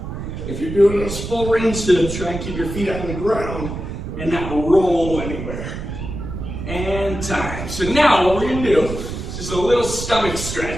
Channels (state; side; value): noise; right; rumble, 7 dB below the sound